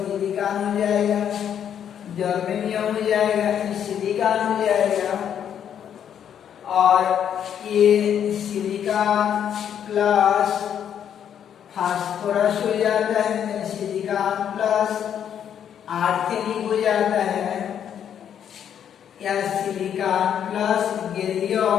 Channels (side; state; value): right; quieter; 9.0 dB